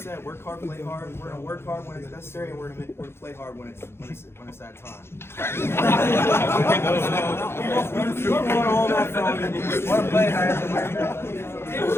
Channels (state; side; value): late; right; 0.12 ms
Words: work hard, play hard. We're gonna work hard when it's necessary, and we're gonna play hard when it's that time. We want all that from you. Want to play hard.